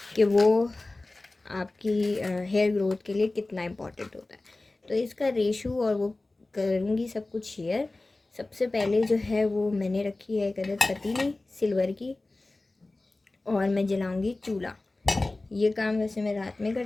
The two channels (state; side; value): quieter; right; 3.0 dB